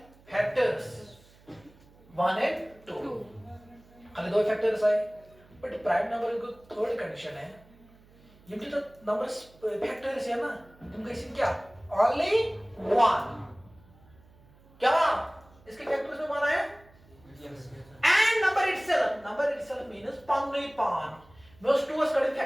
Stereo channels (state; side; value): noise; right; hum, 27 dB below the sound